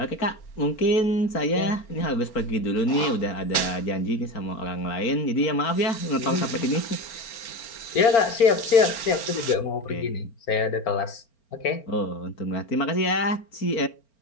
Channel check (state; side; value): late; right; 4.4 ms